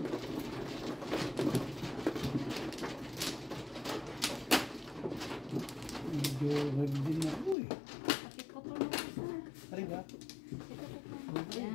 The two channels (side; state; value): right; drops out; at 7.6 s